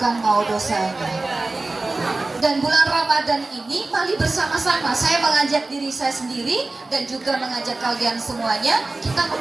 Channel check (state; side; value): quieter; left; 3.2 dB